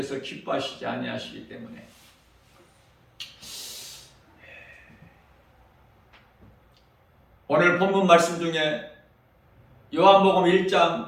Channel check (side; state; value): both; identical; correlation 1.00